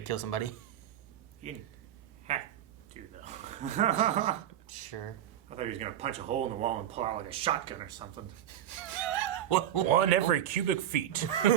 kill somebody. You didn't have to, though. I Sure. thought he was going to punch a hole in the wall and pull out like a shotgun or something. one every cubic feet.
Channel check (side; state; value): left; quieter; 11.1 dB